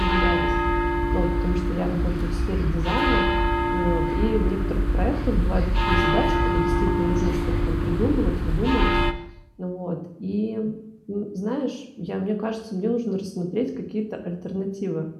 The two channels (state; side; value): identical; both; correlation 1.00